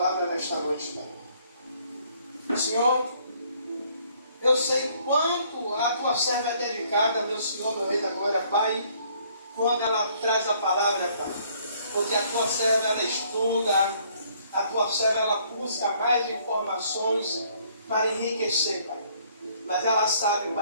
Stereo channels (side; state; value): both; inverted; correlation -0.63